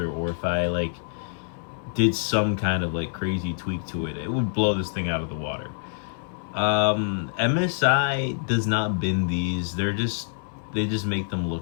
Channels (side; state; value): right; silent; digital silence